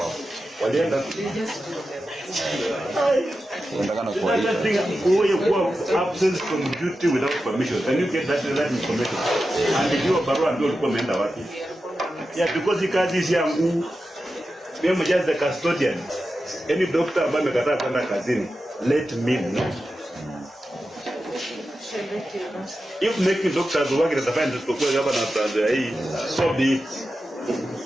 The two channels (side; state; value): both; normal; correlation 0.91